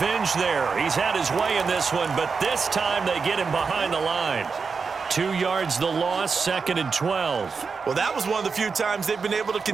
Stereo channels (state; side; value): quieter; left; 5.1 dB